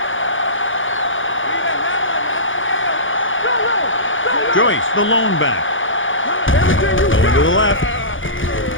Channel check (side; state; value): right; late; 0.57 ms